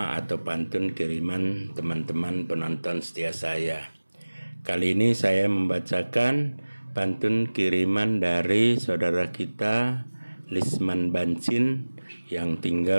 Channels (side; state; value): both; inverted; correlation -1.00